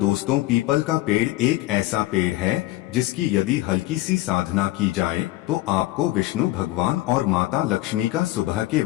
पीपल का पेड़ एक ऐसा पेड़ है जिसकी यदि हल्की सी साधना की जाए तो आपको विष्णु भगवान और माता लक्ष्मी का सुबह के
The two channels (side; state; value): right; quieter; 17.5 dB